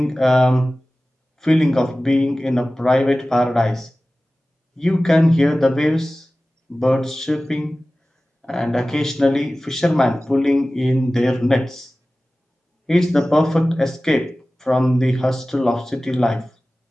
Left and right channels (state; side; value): normal; both; correlation 0.97